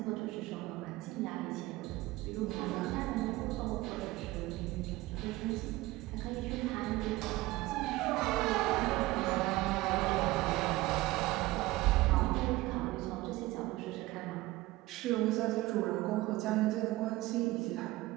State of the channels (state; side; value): quieter; left; 18.9 dB